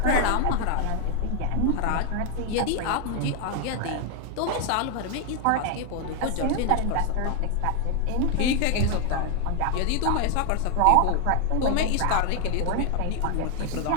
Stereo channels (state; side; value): different; both; correlation 0.00